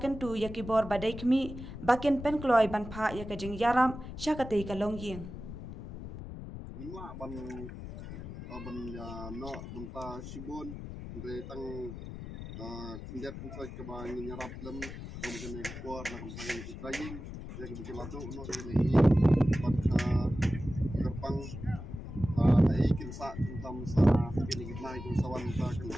tu yakibor badai kmi bakin penkloy banpa yaka Jingïarap syakate ka Ïing. Hima ban no banta sibon de tang kinjat kunsa ke ba Jingïarap lem kene kuar na kene training ya ke bilato no ini pat kerpang ai kinsa kuntam sa kene gitnai kunsawan sa kene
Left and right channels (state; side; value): noise; left; rumble, 10 dB below the sound